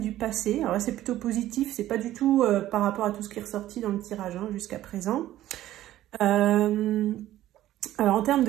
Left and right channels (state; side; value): quieter; left; 13.9 dB